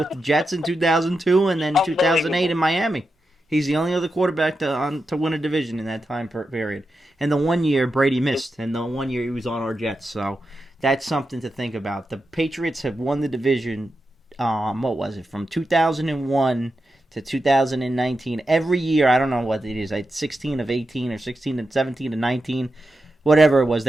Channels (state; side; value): normal; both; correlation 0.88